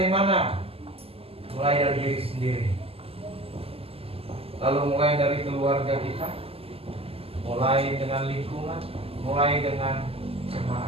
mana? Mulai dari diri sendiri. Lalu mulai dari keluarga kita, mulai dengan lingkungan, mulai dengan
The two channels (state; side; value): late; left; 0.28 ms